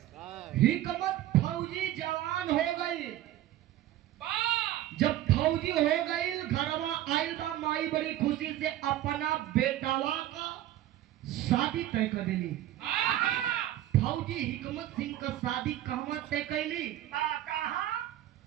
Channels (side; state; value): left; quieter; 13.5 dB